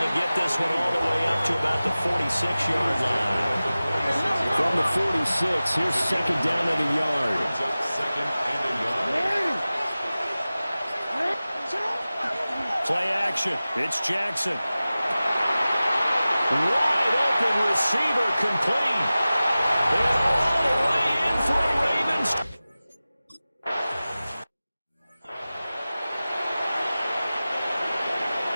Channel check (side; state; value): both; inverted; correlation -0.97